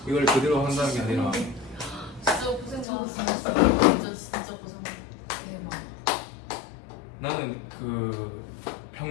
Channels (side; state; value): right; drops out; at 2.9 s